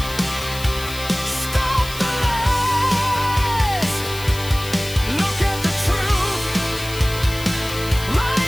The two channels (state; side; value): noise; left; hiss, 12 dB below the sound